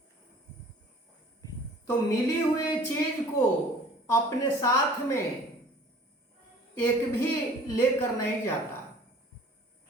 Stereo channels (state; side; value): normal; both; correlation 0.49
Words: तो मिली हुई चीज को अपने साथ में एक भी लेकर नहीं जाता।